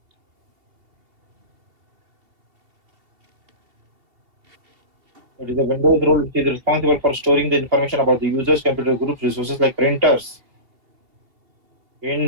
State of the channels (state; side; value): late; left; 2.7 ms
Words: It is a Windows role which is responsible for storing the information about the users, computer groups, resources like printers,